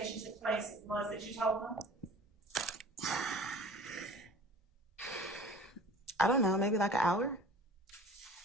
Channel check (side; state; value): both; normal; correlation 0.45